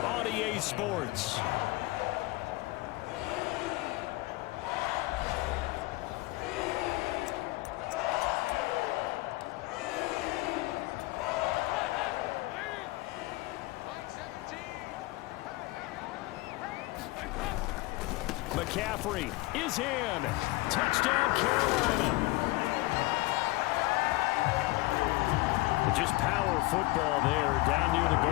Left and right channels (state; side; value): quieter; right; 21.0 dB